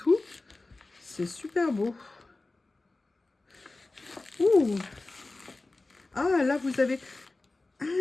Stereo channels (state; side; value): quieter; right; 3.2 dB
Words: C'est super beau. Ouh! Ah, là vous avez...